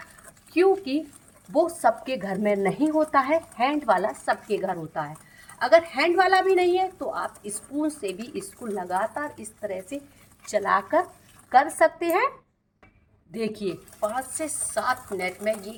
क्योंकि वो सबके घर में नहीं होता है। हैंड वाला सबके घर होता है। अगर हैंड वाला भी नहीं है तो आप स्पून से भी इसको लगातार इस तरह से चलाकर कर सकते हैं। देखिए 5 से 7 मिनट में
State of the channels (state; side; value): identical; both; correlation 1.00